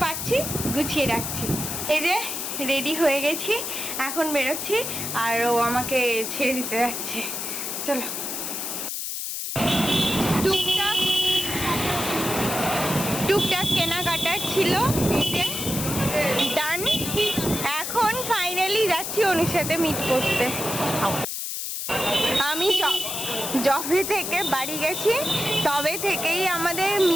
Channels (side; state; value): left; noise; hiss, 4 dB below the sound